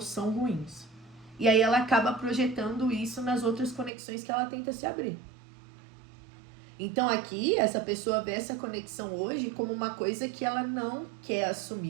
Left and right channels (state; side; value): drops out; left; at 3.9 s